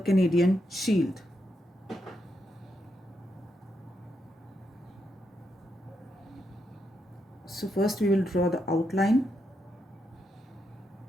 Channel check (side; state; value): both; normal; correlation 0.82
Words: Shield. So first we will draw the outline